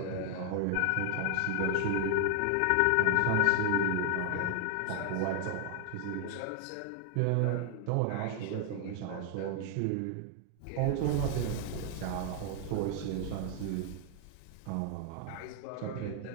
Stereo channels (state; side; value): different; both; correlation 0.00